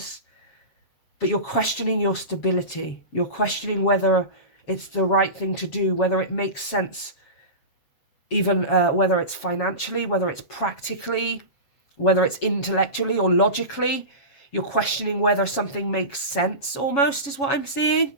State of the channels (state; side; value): late; right; 7.2 ms